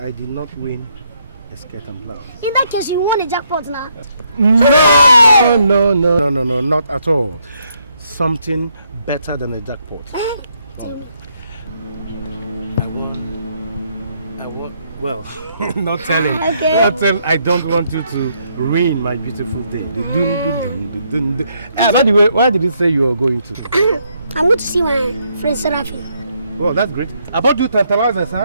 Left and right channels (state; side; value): inverted; both; correlation -0.73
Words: did not win a skirt and blouse. In that case, you won the jackpot now. No, not at all. Something better than a jackpot. Tell me. I want, well, not telling. Okay. Not tell, I don't want you to ruin my beautiful day. By the way, why did you say you are going to? I'm going to see my friend Seraphim. Oh, that's great. I bought you tantalizers,